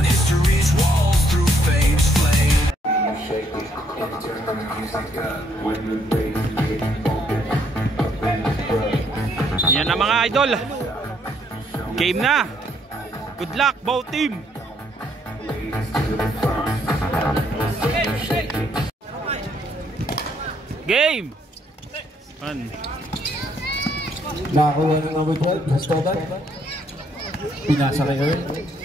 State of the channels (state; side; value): normal; both; correlation 0.70